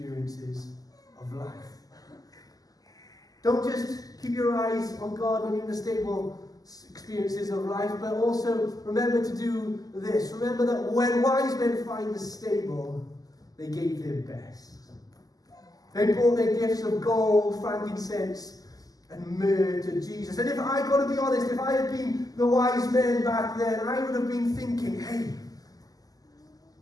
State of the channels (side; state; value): right; late; 0.17 ms